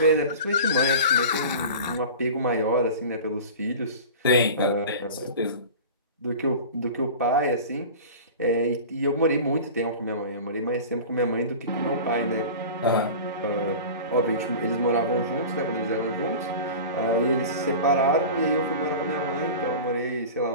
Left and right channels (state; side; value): inverted; both; correlation -0.35